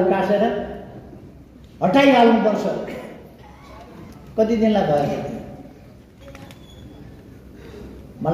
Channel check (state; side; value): identical; both; correlation 1.00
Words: उकासेर हटाइहाल्नुपर्छ। कति दिनलाई भयो?